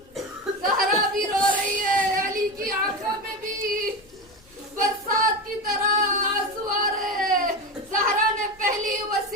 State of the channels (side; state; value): left; noise; rumble, 29 dB below the sound